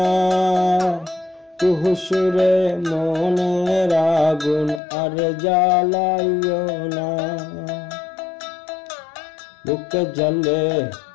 তুহু সুরে মনের আগুন আর জ্বালাইও না। বুকে জ্বলে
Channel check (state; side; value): drops out; right; at 4.8 s